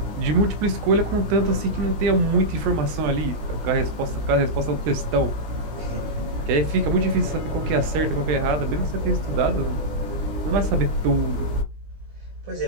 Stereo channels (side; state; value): left; late; 20 ms